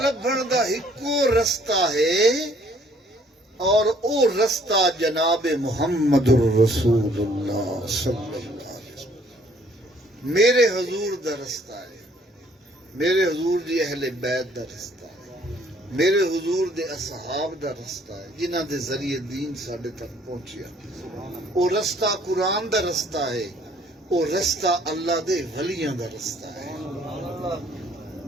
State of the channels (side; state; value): both; normal; correlation 0.61